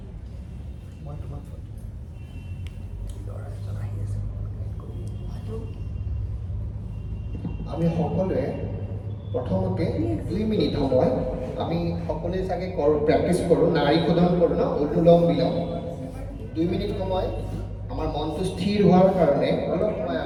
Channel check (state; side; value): identical; both; correlation 1.00